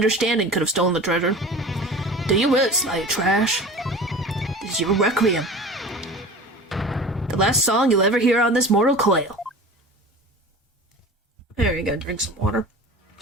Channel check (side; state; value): both; normal; correlation 0.37